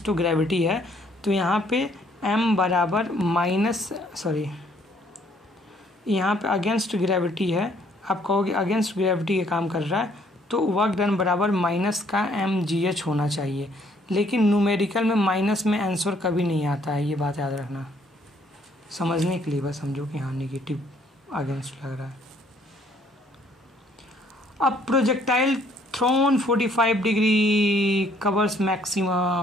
टू ग्रेविटी है, तो यहाँ पे m बराबर माइनस, सॉरी, यहाँ पे अगेंस्ट ग्रेविटी है, आप कहोगे अगेंस्ट ग्रेविटी के काम कर रहा है, तो वर्क डन बराबर माइनस का mgh होना चाहिए। लेकिन न्यूमेरिकल में माइनस में आंसर कभी नहीं आता है, ये बात याद रखना, समझने के लिए बस समझो कि हाँ नेगेटिव अगेंस्ट लग रहा है। अब projectile thrown 45 degree covers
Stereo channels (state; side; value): normal; both; correlation 0.64